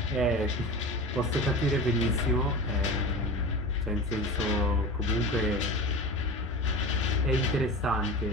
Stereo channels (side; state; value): both; normal; correlation 0.31